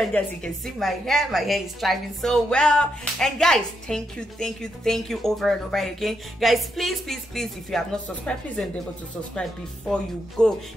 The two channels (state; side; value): normal; both; correlation 0.81